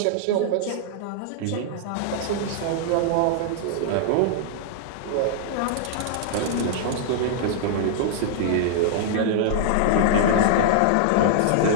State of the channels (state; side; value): different; both; correlation -0.01